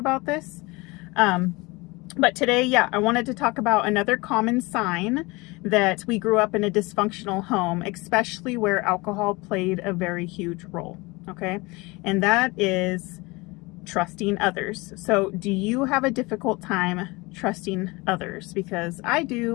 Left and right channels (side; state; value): right; quieter; 24.2 dB